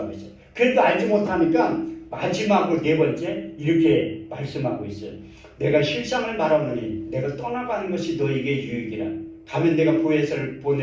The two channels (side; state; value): both; identical; correlation 1.00